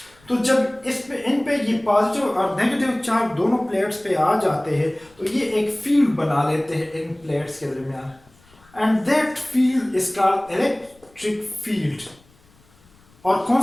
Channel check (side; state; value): left; noise; rumble, 30 dB below the sound